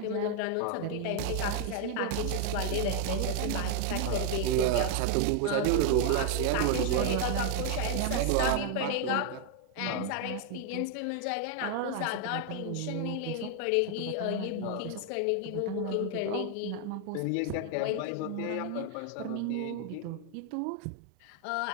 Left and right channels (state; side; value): different; both; correlation 0.01